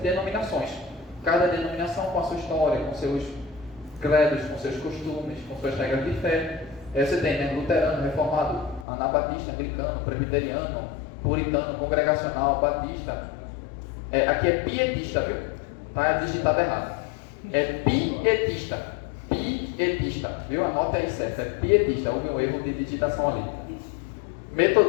Cada denominação com a sua história, com seus credos, com seus costumes, com suas regras de fé. Aí você tem, né, luterano, reformado, anabatista, anglicano, presbiteriano, puritano, congregacional, batista. Aqui é pietista, viu? Está digitado errado. É pietista, viu? Anote aí certo, é pietista, houve um erro de digitação ali.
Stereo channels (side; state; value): right; drops out; at 8.8 s